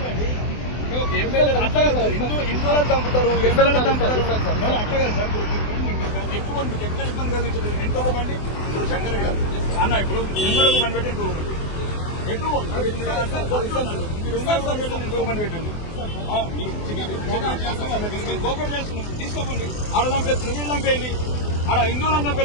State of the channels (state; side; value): late; right; 24 ms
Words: హిందువులను చంపుతారు, ఎమ్మెల్యేలను చంపుతారు. అట్లా సార్ ఎక్కువ ఎక్కడ ఇబ్బంది కలిగించలేదు. ఇంకొక బండి ఇప్పుడు శంకర్ గారు అన్న ఇప్పుడు ఇంకొక బండి పెట్టి ఇంకొక బండి ఎక్కువ మీరు ఇంకొక బండి పెట్టండి. కోపరేట్ చేస్తున్నాం, తీసుకోకండి. ఆడ చంపేస్తున్నారు, వీళ్ళు చంపేయండి. ఆడ హిందువులను